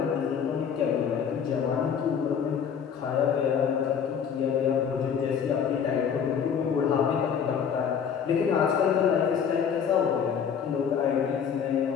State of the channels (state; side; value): quieter; right; 7.4 dB